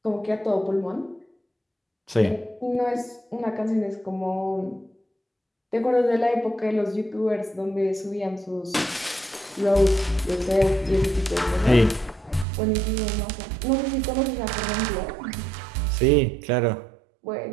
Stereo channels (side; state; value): left; drops out; at 12.5 s